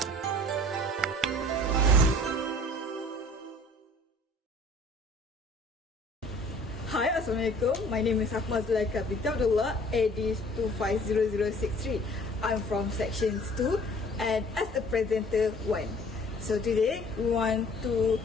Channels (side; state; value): both; normal; correlation 0.51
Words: Assalamualaikum. My name is Akmal Zulaika binti Abdullah, AD 250063. I'm from Section 2 and as a presenter 1. So today we want to